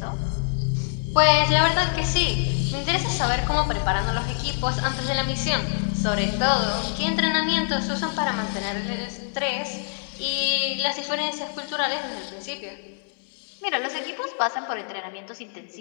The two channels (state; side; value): silent; right; digital silence